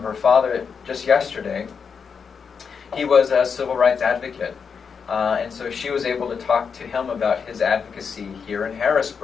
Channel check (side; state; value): right; quieter; 6.1 dB